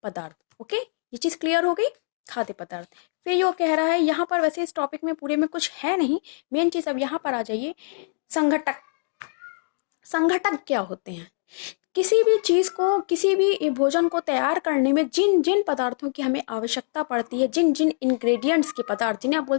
पदार्थ। ओके, ये चीज़ क्लियर हो गई। खाद्य पदार्थ। फिर यो कह रहा है यहाँ पर, वैसे इस टॉपिक में पूरे में कुछ है नहीं, मेन चीज़ अब यहाँ पर आ जाइए। संघटक। संघटक क्या होते हैं? किसी भी चीज़ को, किसी भी भोजन को तैयार करने में जिन जिन पदार्थों की हमें आवश्यकता पड़ती है, जिन जिन इंग्रेडिएंट्स के पदार्थ, जिन्हें आप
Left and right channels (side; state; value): right; silent; digital silence